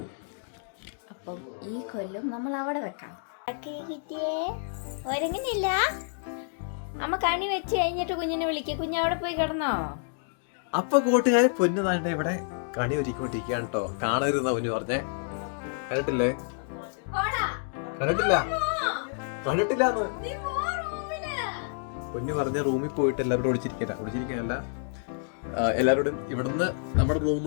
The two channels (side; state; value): right; silent; digital silence